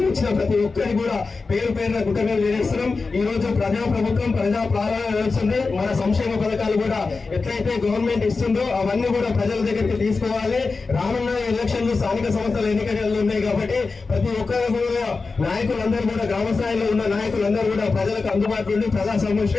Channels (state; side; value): quieter; right; 4.2 dB